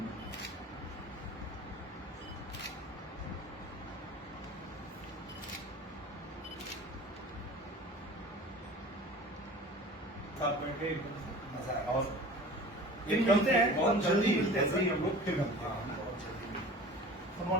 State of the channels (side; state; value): both; normal; correlation 0.41